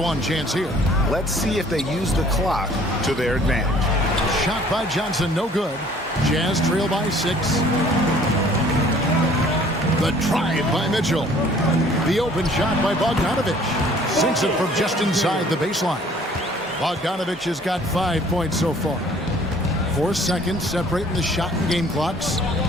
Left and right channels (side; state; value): both; normal; correlation 0.55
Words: chance here. Let's see if they use the clock to their advantage. Shot by Johnson, no good. Jazz trail by 6. The drive by Mitchell. The open shot by Bogdanovic. Sinks it from just inside the baseline. Bogdanovic has got 5 points so far. 4 seconds separating the shot and game clocks.